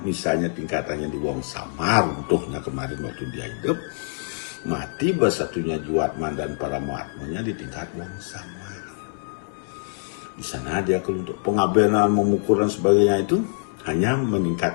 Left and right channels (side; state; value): right; silent; 60 dB below the other